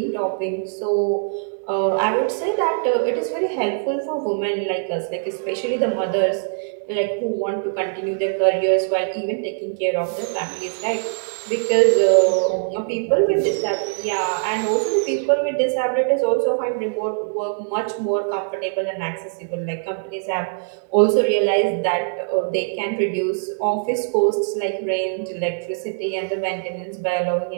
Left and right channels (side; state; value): left; silent; 64 dB below the other